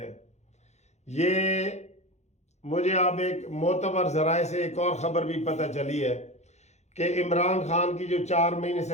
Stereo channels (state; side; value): late; right; 0.33 ms